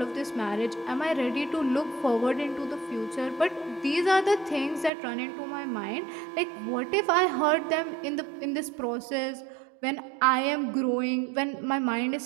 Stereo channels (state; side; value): drops out; left; at 4.9 s